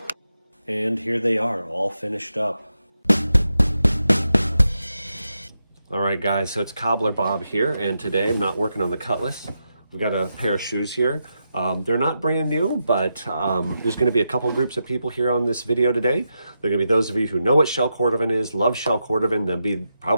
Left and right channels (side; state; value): both; inverted; correlation -0.86